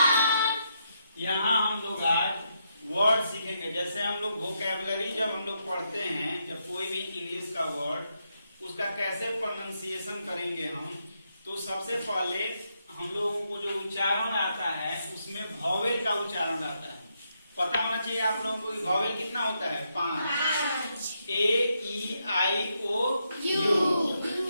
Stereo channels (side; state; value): both; inverted; correlation -0.80